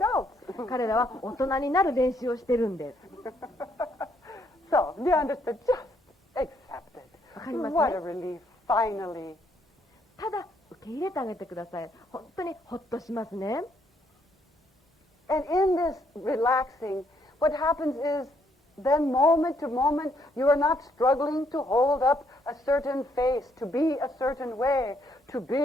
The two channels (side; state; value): both; normal; correlation 0.71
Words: 彼らは大人になる練習をしてるんです。So, do you understand? Just accept it. わかりますね。What a relief, finally. ただ受け入れてあげてください。本当にほっとしますね。And in this relaxing, what happens is then moment to moment, you are not struggling to hold up a certain face, to be a certain way, to be